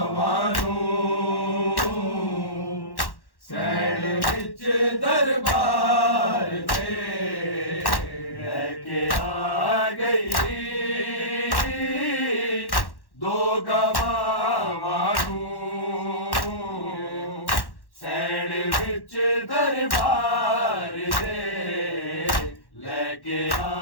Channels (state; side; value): late; right; 1.1 ms